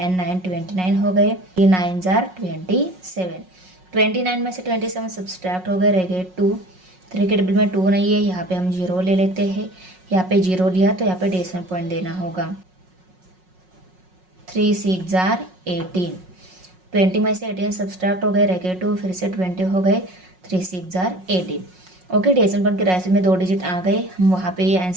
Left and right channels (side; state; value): left; late; 5.5 ms